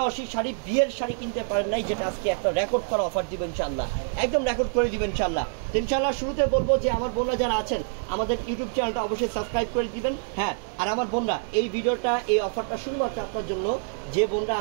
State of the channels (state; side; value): silent; left; digital silence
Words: শাড়ি, বিয়ের শাড়ি কিনতে পারেন নাই, যেটা আজকে একটা রেকর্ড করা অফার দিব ইনশাল্লাহ। একদম রেকর্ড করে দিবেন ইনশাল্লাহ। ইনশাল্লাহ শুরুতে বলবো যে আমার বোনরা যারা আছেন, আমাদের ইউটিউব চ্যানেলটা অবশ্যই সাবস্ক্রাইব করে দিবেন। হ্যাঁ, আর আমার বোনরা, এই ভিডিওটা, এই অফারটা শুধুমাত্র আপনার জন্য। যে বোনরা